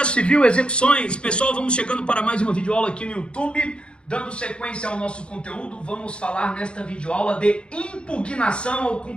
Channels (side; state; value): right; late; 0.056 ms